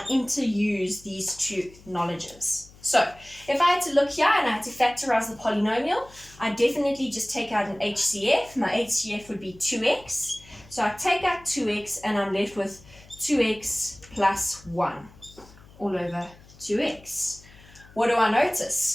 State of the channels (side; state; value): left; noise; hum, 23 dB below the sound